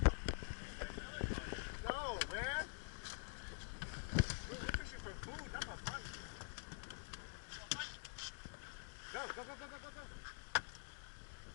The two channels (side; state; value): right; silent; digital silence